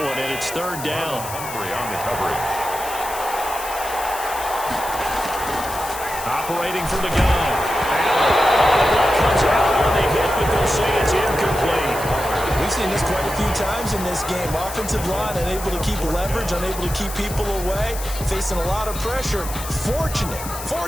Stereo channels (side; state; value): left; noise; hiss, 10 dB below the sound